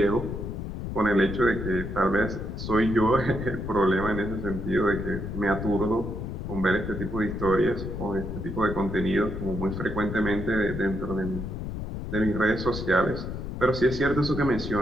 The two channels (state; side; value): noise; left; rumble, 6 dB below the sound